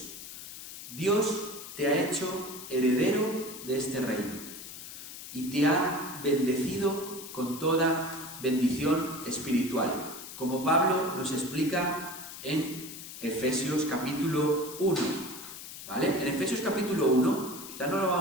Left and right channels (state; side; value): noise; left; hiss, 12 dB below the sound